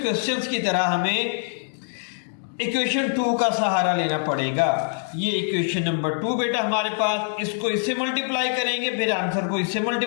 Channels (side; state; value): right; silent; 62 dB below the other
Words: क्वेश्चंस की तरह हमें इक्वेशन 2 का सहारा लेना पड़ेगा। ये इक्वेशन नंबर 2 बेटा हमारे पास, इसको इससे मल्टीप्लाई करेंगे, फिर आंसर को इससे